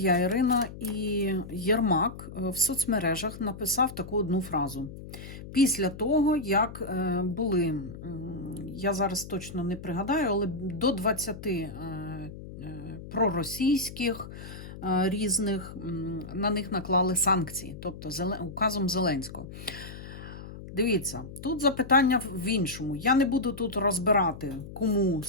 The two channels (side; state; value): left; noise; hum, 13 dB below the sound